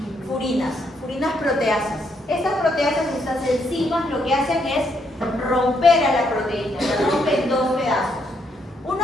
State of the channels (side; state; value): both; normal; correlation 0.75